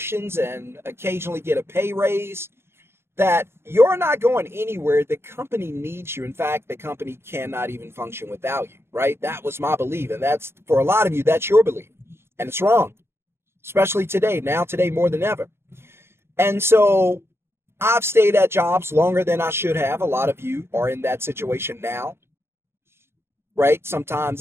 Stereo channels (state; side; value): late; left; 0.12 ms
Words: and occasionally get a pay raise, that you're not going anywhere. The company needs you. In fact, the company cannot even function without you, right? That was my belief. And that's, for a lot of you, that's your belief. And it's wrong, especially today, today more than ever. And so I've stayed at jobs longer than I should have. A lot of you are in that situation now, right? Sometimes